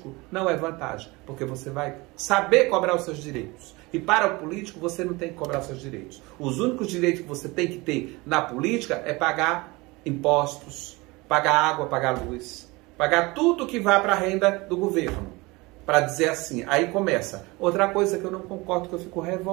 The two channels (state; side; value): quieter; left; 23.5 dB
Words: não é vantagem, porque você vai saber cobrar os seus direitos. E para o político você não tem que cobrar os seus direitos. Os únicos direitos que você tem que ter na política é pagar impostos, pagar água, pagar luz, pagar tudo que vai para a renda do governo. Para dizer assim, aí começa. Outra coisa que eu não concordo, que eu fico